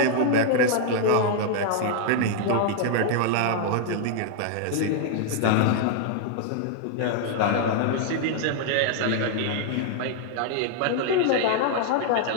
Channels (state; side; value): different; both; correlation 0.00